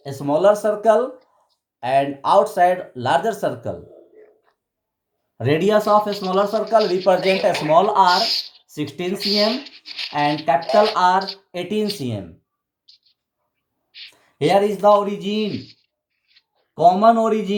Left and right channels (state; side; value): identical; both; correlation 1.00